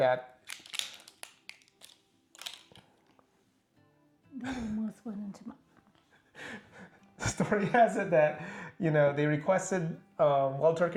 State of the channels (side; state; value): both; identical; correlation 1.00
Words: That almost went into my... The story has it that, you know, they requested, Wild